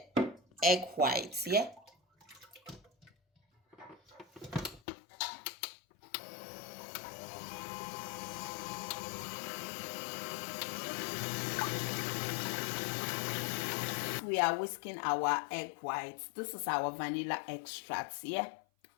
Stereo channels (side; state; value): right; drops out; at 4.8 s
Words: egg whites. Yeah. We are whisking our egg whites. This is our vanilla extract. Yeah.